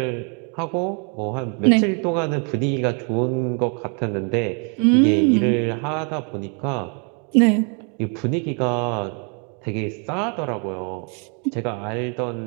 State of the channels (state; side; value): quieter; left; 38.3 dB